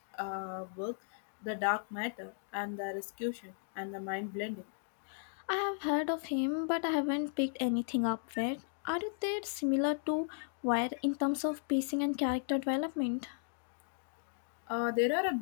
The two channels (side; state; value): right; silent; digital silence